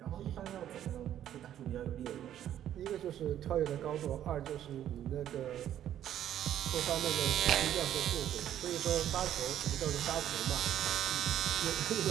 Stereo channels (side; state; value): left; quieter; 11.1 dB